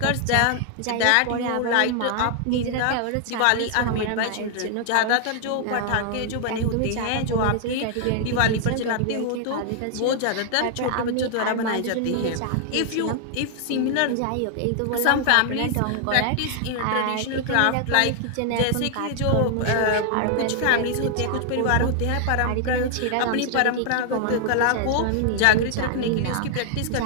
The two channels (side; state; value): both; different; correlation 0.00